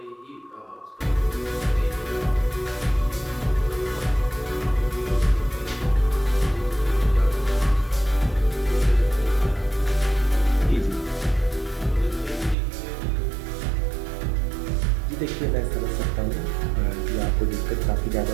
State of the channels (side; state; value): left; drops out; at 12.6 s